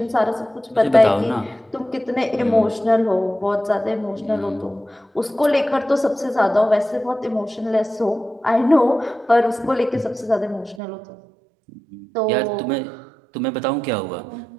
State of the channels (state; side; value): drops out; left; at 10.8 s